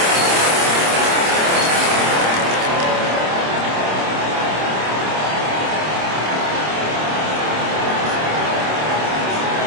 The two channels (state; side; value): late; left; 26 ms